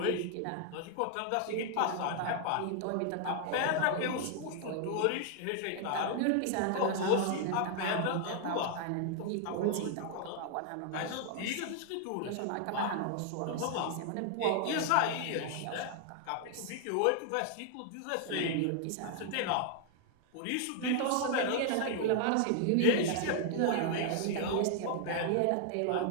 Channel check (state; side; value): different; both; correlation 0.00